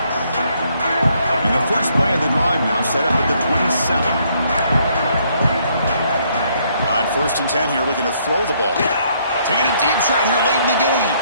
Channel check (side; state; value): both; inverted; correlation -0.69